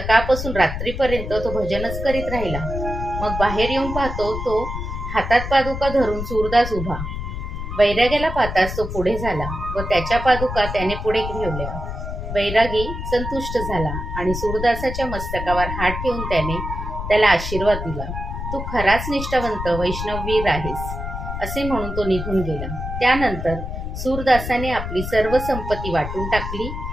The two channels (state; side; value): noise; left; rumble, 6 dB below the sound